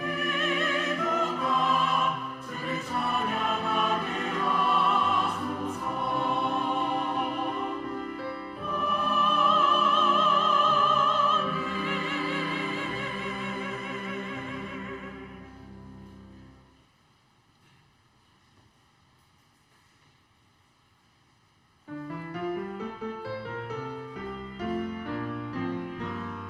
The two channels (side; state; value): both; identical; correlation 1.00